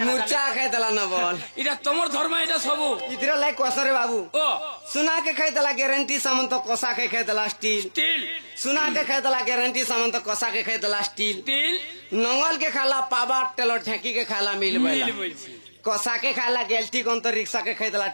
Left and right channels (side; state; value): both; inverted; correlation -1.00